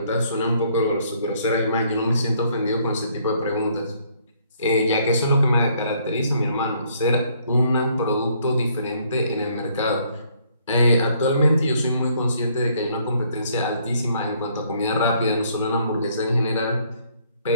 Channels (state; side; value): inverted; both; correlation -0.66